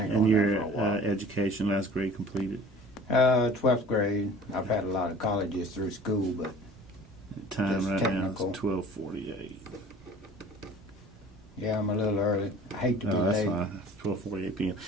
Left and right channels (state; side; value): normal; both; correlation 0.45